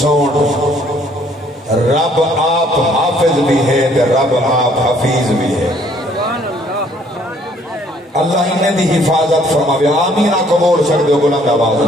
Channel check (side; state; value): both; normal; correlation 0.62